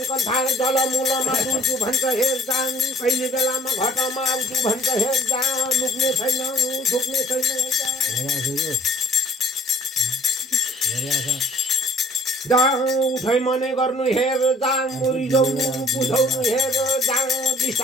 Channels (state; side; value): normal; both; correlation 0.55